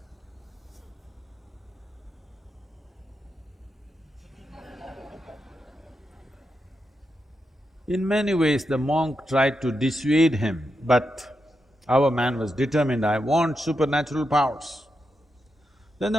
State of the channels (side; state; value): both; normal; correlation 0.86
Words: In many ways, the monk tried to dissuade him, but our man was determined, I want supernatural powers. Then